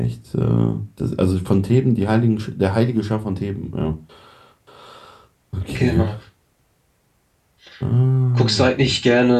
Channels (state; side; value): identical; both; correlation 1.00